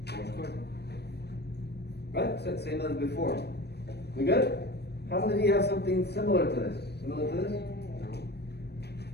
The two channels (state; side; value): late; right; 0.48 ms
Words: 4 square. Right? So same as before. We good? How many of you have something similar to this? Similar to this?